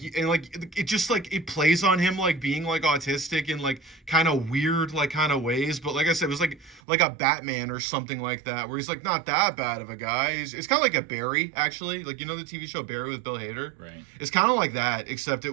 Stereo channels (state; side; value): drops out; left; at 6.8 s